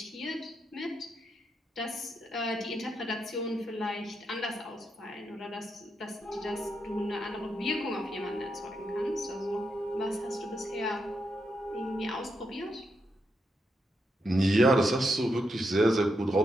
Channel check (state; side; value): normal; both; correlation 0.82